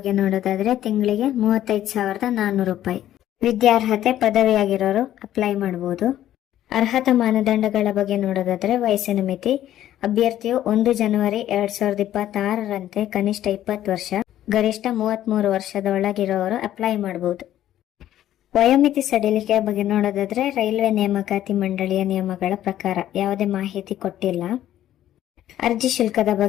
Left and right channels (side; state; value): right; quieter; 12.4 dB